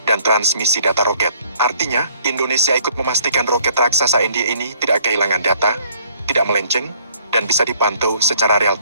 dan transmisi data roket. Artinya, Indonesia ikut memastikan roket raksasa India ini tidak kehilangan data, tidak melenceng, dan bisa dipantau secara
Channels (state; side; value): inverted; both; correlation -0.60